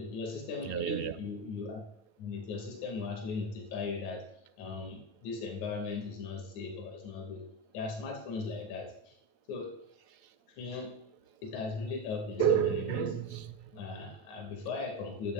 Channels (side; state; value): right; late; 8.8 ms